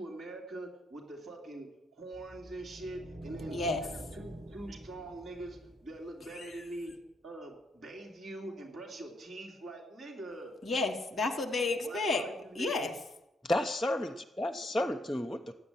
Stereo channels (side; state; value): both; normal; correlation 0.73